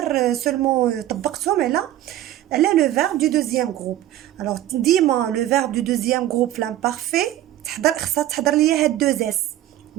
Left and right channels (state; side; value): quieter; left; 13.6 dB